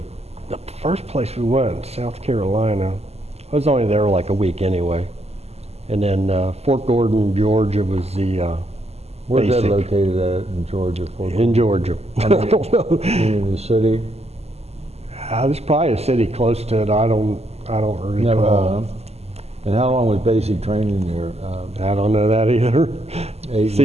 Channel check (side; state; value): left; late; 0.30 ms